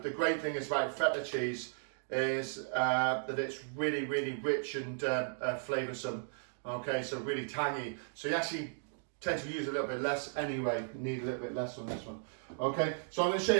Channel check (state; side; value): silent; left; digital silence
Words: great thing is about feta cheese is that it's really rich and flavoursome. Okay, so really tangy. So you actually tend to use a little bit less anyway. You need a little bit less on this one. Okay, so I'm going to show